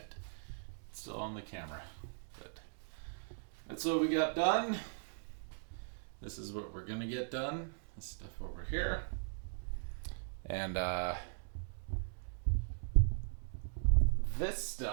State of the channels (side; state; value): left; silent; digital silence